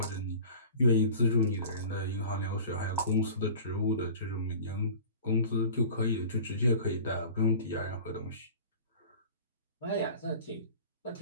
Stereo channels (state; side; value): inverted; both; correlation -0.40